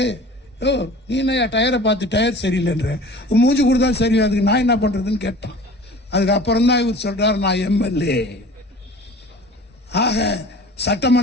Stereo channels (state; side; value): normal; both; correlation 0.43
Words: ஓ நீ என்ன டயரை பார்த்து டயர் சரியில்லைன்ற, மூஞ்சி கொடுத்தா சரி, அதுக்கு நான் என்ன பண்றதுன்னு கேட்டான். அதுக்கப்புறம் தான் இவர் சொல்றாரு நான் எம்எல்ஏ. ஆக